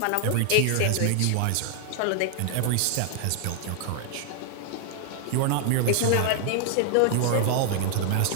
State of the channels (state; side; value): different; both; correlation 0.00